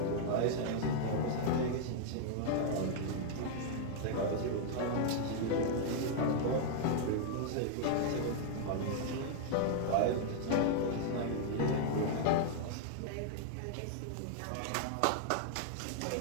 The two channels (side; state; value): both; different; correlation -0.01